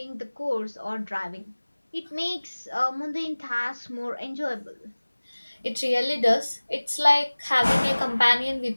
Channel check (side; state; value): both; inverted; correlation -1.00